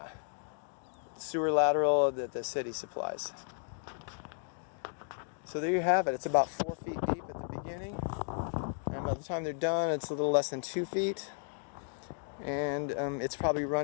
sewer lateral that the city supplies. So there you have it. It's about 4 feet deep at the beginning, and by the time they're done, it's a little less than 2 feet, and it's probably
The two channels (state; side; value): silent; right; digital silence